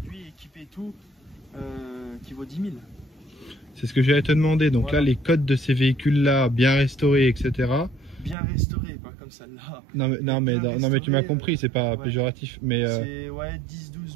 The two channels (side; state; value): left; drops out; at 8.3 s